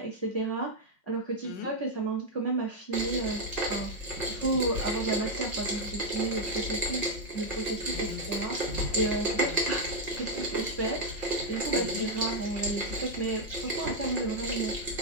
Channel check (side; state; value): right; late; 5.5 ms